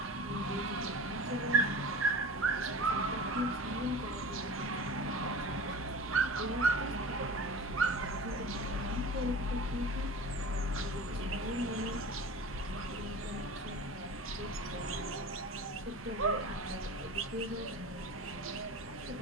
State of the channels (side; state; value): both; normal; correlation 0.36